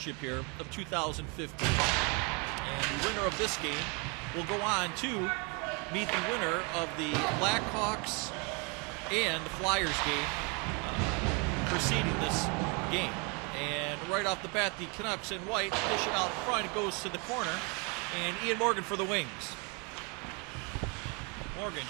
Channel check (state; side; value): quieter; left; 32.2 dB